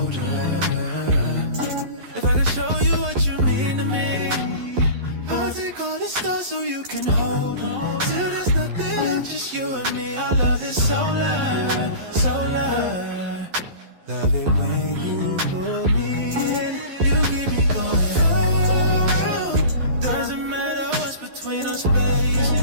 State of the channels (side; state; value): left; late; 11 ms